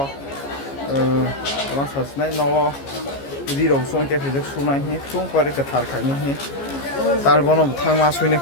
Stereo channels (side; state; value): right; late; 15 ms